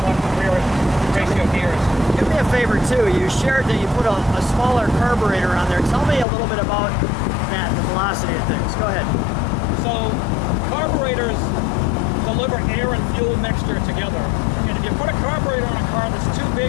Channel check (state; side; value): drops out; right; at 6.2 s